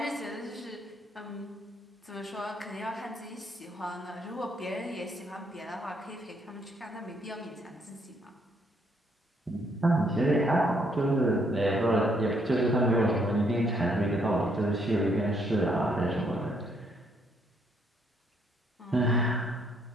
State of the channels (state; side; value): normal; both; correlation 0.70